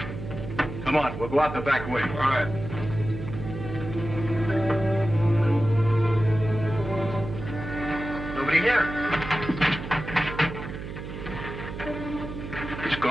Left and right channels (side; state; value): right; noise; hum, 9 dB below the sound